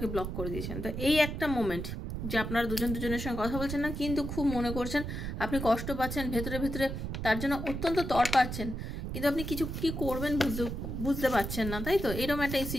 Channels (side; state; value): right; noise; rumble, 5 dB below the sound